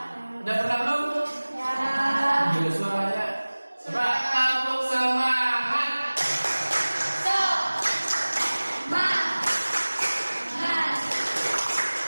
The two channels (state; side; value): inverted; both; correlation -1.00